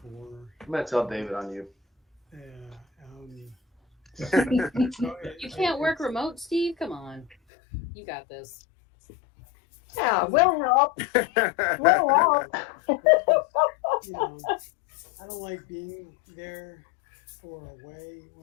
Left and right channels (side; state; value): right; drops out; at 7.4 s